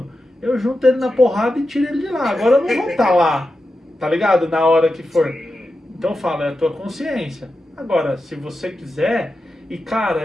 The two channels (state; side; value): normal; both; correlation 0.90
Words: eu junto ele na porrada e tiro ele de lá. Agora eu não vou estar lá, tá ligado? Na hora que for. Então eu falo, é a tua consciência. Agora, se você quiser, e cara,